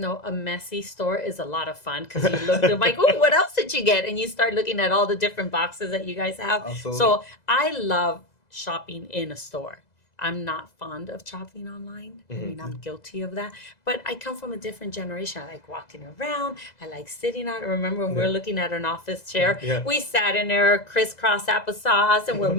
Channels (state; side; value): late; right; 2.0 ms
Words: a messy store is a lot of fun because you look, they're like, oh, what else did you get? And you start looking at all the different boxes that you guys have. Absolutely. So I love shopping in a store. I'm not fond of shopping online. I mean, I'm guilty of that. But I come from a different generation. I like walking around. I like sitting out. I remember when we were looking at an office chair, we sat in there, crisscross applesauce, and we're